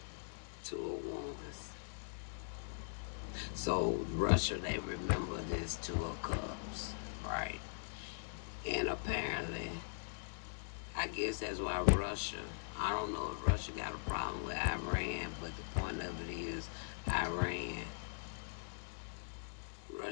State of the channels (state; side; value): silent; right; digital silence